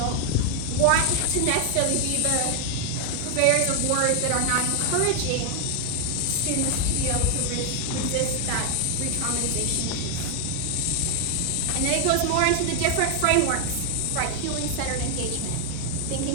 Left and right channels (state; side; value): different; both; correlation 0.00